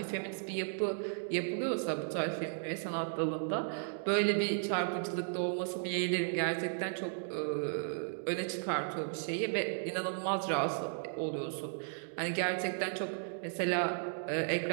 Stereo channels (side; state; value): left; silent; digital silence